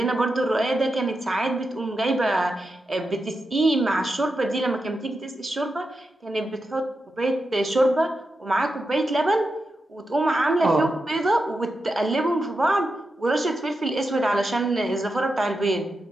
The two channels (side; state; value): both; normal; correlation 0.88